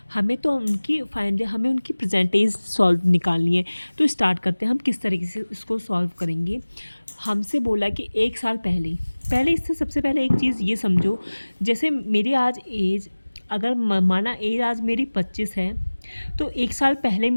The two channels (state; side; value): inverted; both; correlation -1.00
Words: हमें तो हमें उनकी प्रेजेंट एज सॉल्व निकालनी है। तो स्टार्ट करते हैं हम किस तरीके से इसको सॉल्व करेंगे। हमसे बोला कि 1 साल पहले पहले इससे सबसे पहले एक चीज़ ये समझो, जैसे मेरी आज एज, अगर माना एज आज मेरी 25 है, तो 1 साल पहले